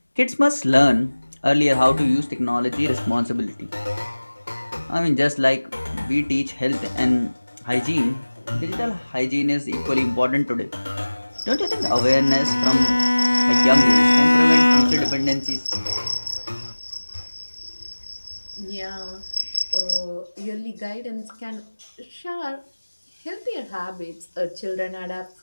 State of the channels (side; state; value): both; inverted; correlation -1.00